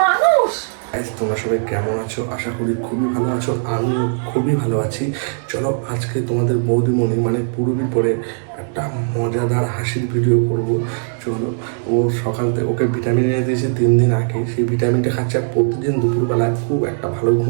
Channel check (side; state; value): left; silent; 67 dB below the other